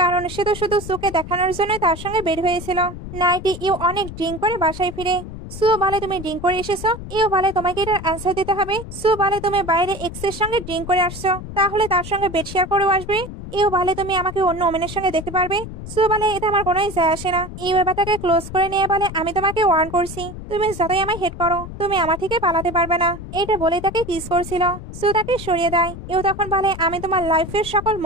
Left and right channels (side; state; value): left; noise; rumble, 11 dB below the sound